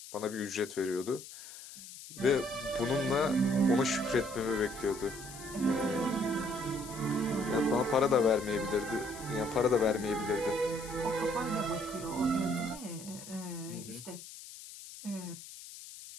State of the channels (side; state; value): left; noise; hiss, 14 dB below the sound